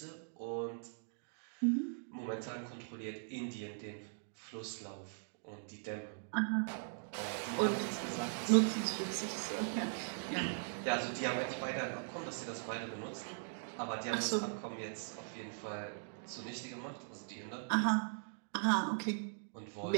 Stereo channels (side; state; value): left; silent; digital silence